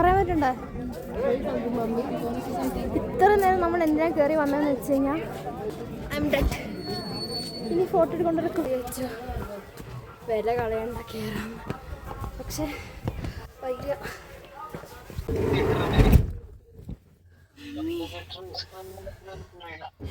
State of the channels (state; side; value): identical; both; correlation 1.00